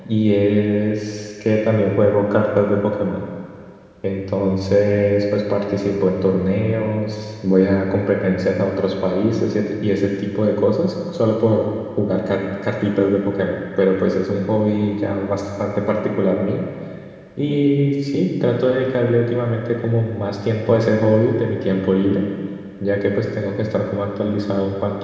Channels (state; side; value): identical; both; correlation 1.00